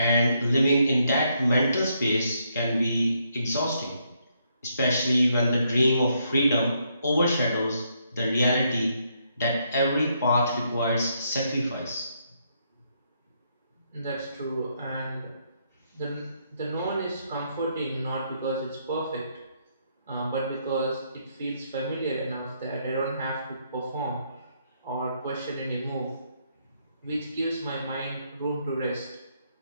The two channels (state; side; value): inverted; both; correlation -0.75